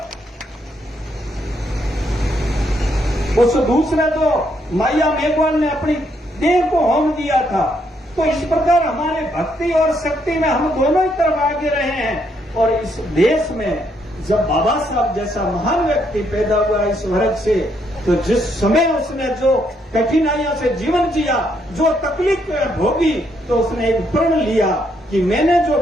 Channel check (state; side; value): normal; both; correlation 0.74